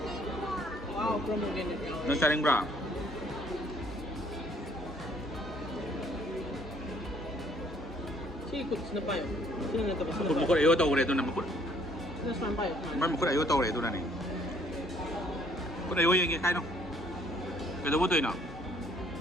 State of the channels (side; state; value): both; normal; correlation 0.63